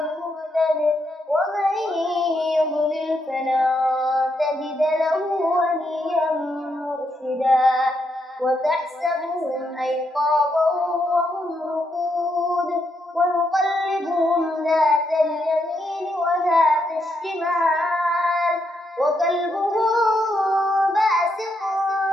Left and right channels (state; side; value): normal; both; correlation 0.79